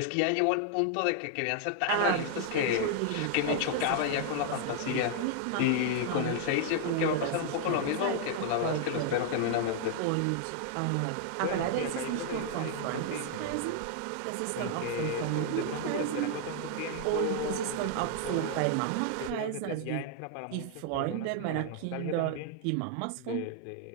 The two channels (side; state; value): both; different; correlation 0.00